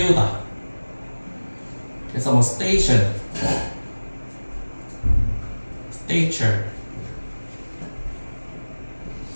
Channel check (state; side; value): inverted; both; correlation -1.00